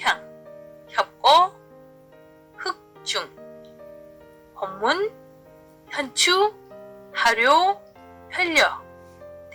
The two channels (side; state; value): both; identical; correlation 1.00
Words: 협거, 흑중, 혼문, 현추, 하료, 혈려,